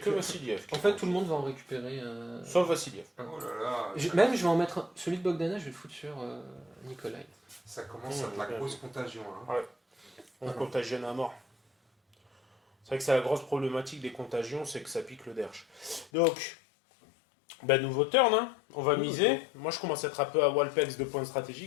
Vassiliev. En fait, tout le monde va en récupérer. Sauf Vassiliev. Oh là là. Même, je vais en mettre un. Celui de Bogdanov, je vais le foutre sur Nikolai. Ça commence à être la grosse contagion. Hein. On contagionne à mort. C'est vrai que c'est la grosse problématique des contagions, c'est que ça pique le derche. Donc, nouveau turn, hein. On va miser. Moi, je commence à être un peu à Walpex de points de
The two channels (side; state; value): right; drops out; at 16.1 s